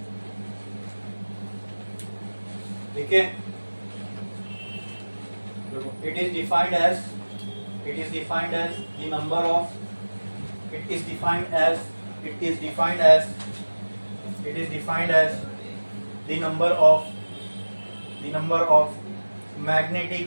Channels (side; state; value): both; inverted; correlation -1.00